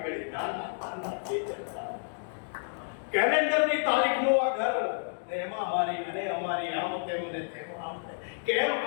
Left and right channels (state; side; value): silent; right; digital silence